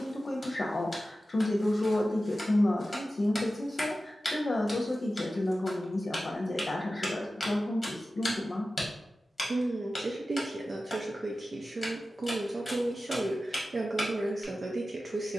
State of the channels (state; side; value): normal; both; correlation 0.94